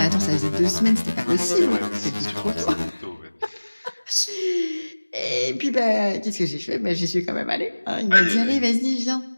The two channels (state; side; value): inverted; both; correlation -1.00